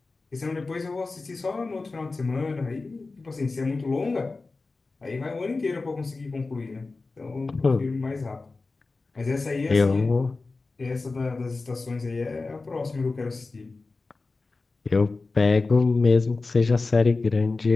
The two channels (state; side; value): quieter; right; 3.7 dB